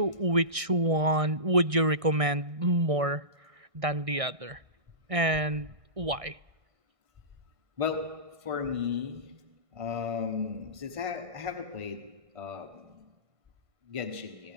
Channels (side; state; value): left; late; 1.6 ms